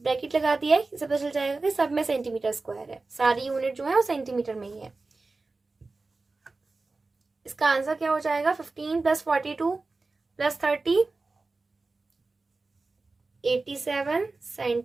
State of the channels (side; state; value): left; quieter; 3.6 dB